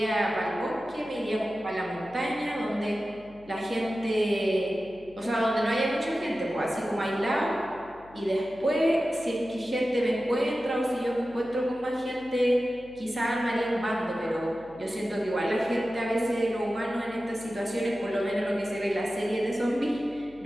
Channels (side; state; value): left; noise; hum, 24 dB below the sound